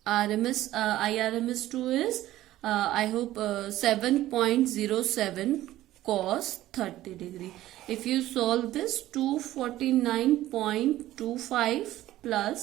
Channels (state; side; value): quieter; left; 14.8 dB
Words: RMS Irms 2 is I hope 7.07 cos 30 degree. If you solve this, 249.25